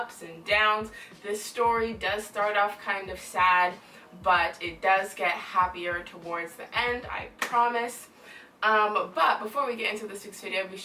and downs. This story does start off kind of sad, but it does get happier towards the end, I promise. But before we get into this week's video, be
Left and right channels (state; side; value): identical; both; correlation 1.00